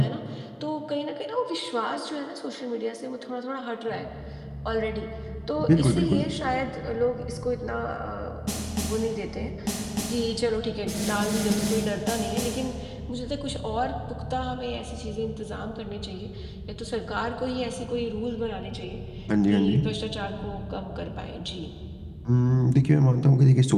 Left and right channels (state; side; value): identical; both; correlation 1.00